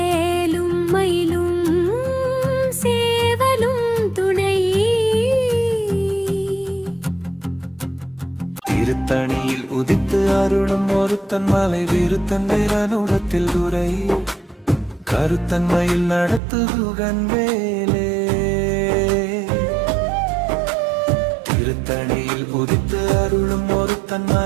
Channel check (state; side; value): drops out; left; at 16.4 s